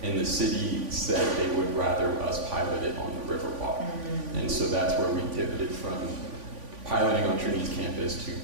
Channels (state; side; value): late; left; 3.5 ms